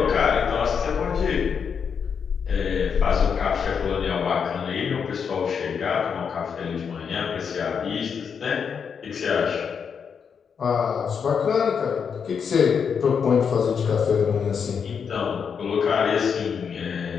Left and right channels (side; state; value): right; quieter; 6.7 dB